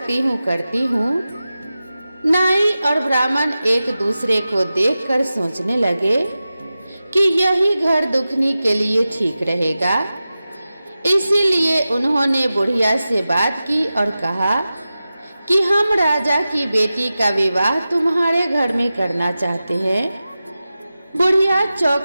हूँ करती हूँ। नाई और ब्राह्मण एक दूसरे को देखकर सोचने लगे कि यही घर दुखनी के लिए ठीक रहेगा। इसीलिए उन्होंने बुढ़िया से बात की और कहा कि हम राजा की बेटी का विवाह तुम्हारे घर में करना चाहते हैं। बुढ़िया चौंक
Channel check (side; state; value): both; inverted; correlation -0.94